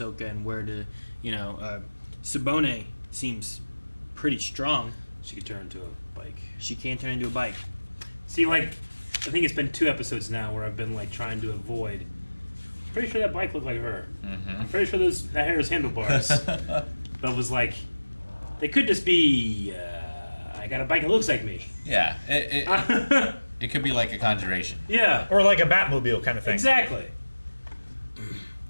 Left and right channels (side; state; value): both; inverted; correlation -1.00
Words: and where to, Sabone seems pretty strong. She could turn into a bike. She can turn into a bike. See, like, I think it's been 2 episodes now where I've been, like, trying to avoid. Pretty sure that bike looked like her. I'm pretty sure that hair is handlebars. But it was like, they could just be, I got a bike that looks like me. Yeah. It could be like a conjuration. Yeah, Or like a Batmobile kind of thing. exactly.